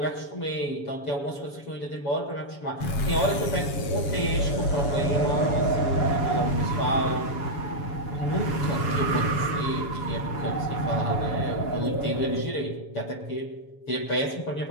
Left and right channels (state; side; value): late; right; 7.1 ms